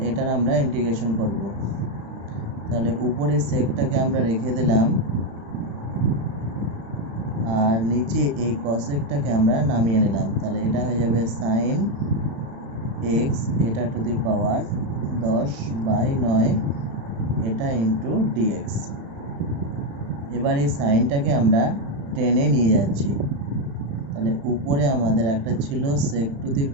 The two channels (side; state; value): left; late; 35 ms